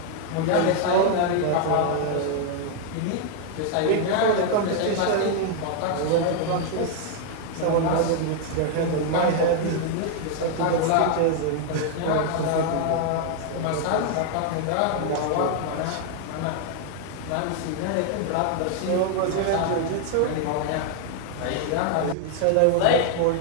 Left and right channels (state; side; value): different; both; correlation 0.00